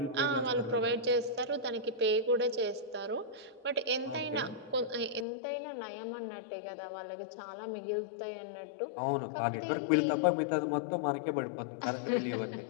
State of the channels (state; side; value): drops out; right; at 5.2 s